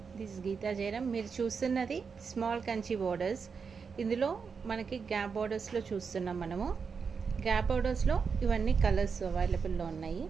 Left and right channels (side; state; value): left; quieter; 5.7 dB